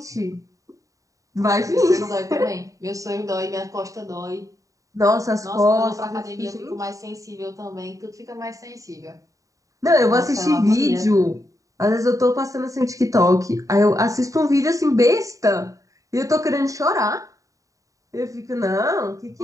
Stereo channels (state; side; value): late; left; 0.16 ms